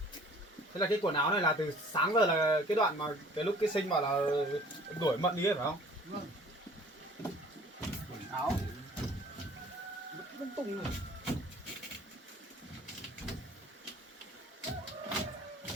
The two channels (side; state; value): both; normal; correlation 0.51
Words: Thế là cái quần áo này là từ sáng giờ là cái đoạn mà cái lúc cái Sinh bảo là đuổi Mận đi ấy phải không? Vâng. Quần áo vứt lung tung rồi.